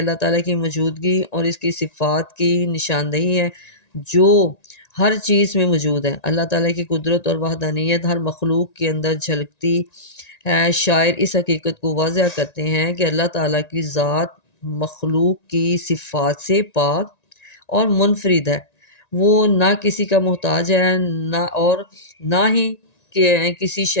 تعالیٰ کی موجودگی اور اس کی صفات کی نشاندہی ہے جو ہر چیز میں موجود ہے۔ اللہ تعالیٰ کی قدرت اور وحدانیت ہر مخلوق کے اندر جھلکتی ہے۔ شاعر اس حقیقت کو واضح کرتے ہیں کہ اللہ تعالیٰ کی ذات مخلوق کی صفات سے پاک اور منفرد ہے۔ وہ نہ کسی کا محتاج ہے نہ ہی کسی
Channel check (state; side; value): late; right; 1.9 ms